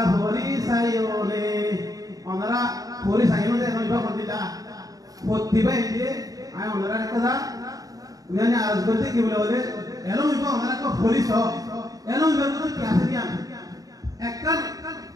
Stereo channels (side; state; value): left; late; 0.18 ms